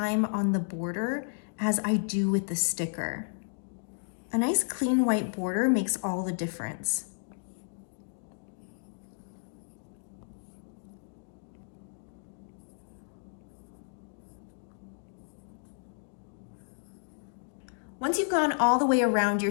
on the border as I do with the sticker. A nice clean white border makes all the difference. Once you've gone all the way around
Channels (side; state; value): right; silent; digital silence